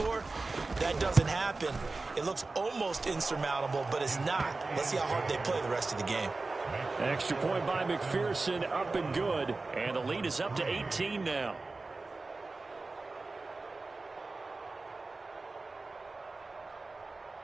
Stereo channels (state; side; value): quieter; left; 3.6 dB